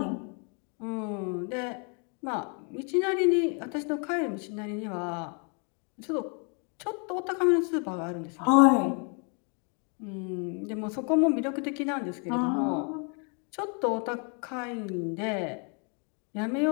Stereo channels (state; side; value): quieter; right; 37.9 dB